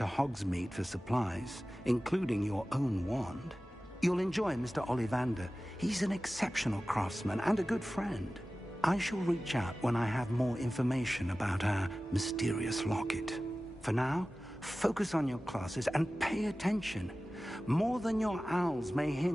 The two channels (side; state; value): both; normal; correlation 0.96